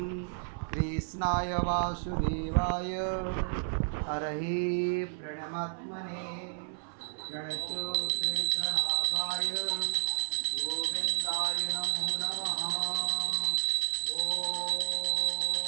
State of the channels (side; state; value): left; silent; 57 dB below the other